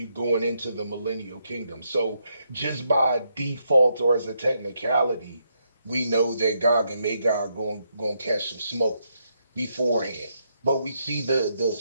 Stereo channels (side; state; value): both; inverted; correlation -0.78